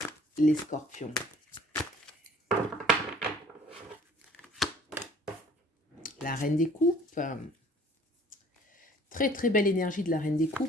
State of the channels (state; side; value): normal; both; correlation 0.53